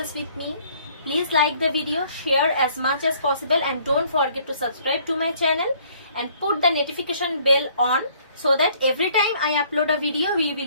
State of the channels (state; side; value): inverted; both; correlation -0.60